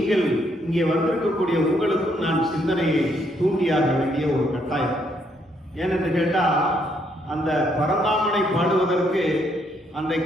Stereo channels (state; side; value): normal; both; correlation 0.72